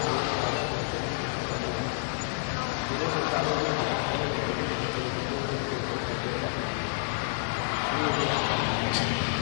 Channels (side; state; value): right; silent; digital silence